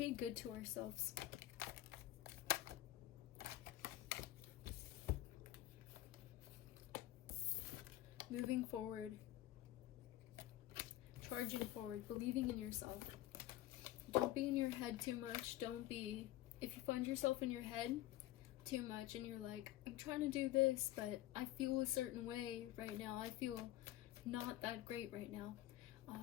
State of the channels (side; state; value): right; quieter; 15.0 dB